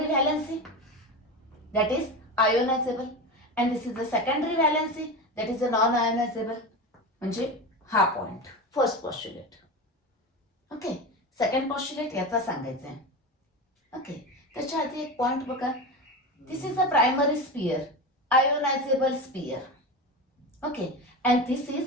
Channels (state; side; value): normal; both; correlation 0.23